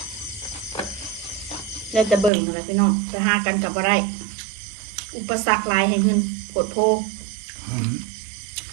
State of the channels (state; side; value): drops out; left; at 2.3 s